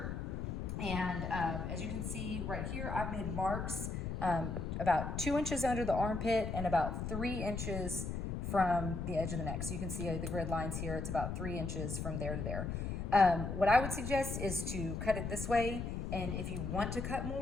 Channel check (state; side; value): noise; left; rumble, 3 dB below the sound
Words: And as you can see right here, I've made marks about 2 inches under the armpit and about 3 inches from the edge of the neck. So you can see the grid lines here. It's about 3 inches from there to there. What I would suggest is to cut it this way. And if you want to cut